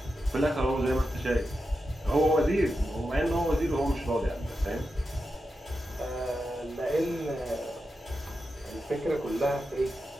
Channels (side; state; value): both; normal; correlation 0.89